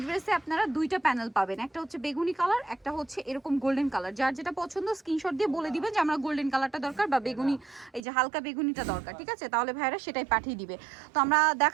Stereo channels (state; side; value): drops out; left; at 8.0 s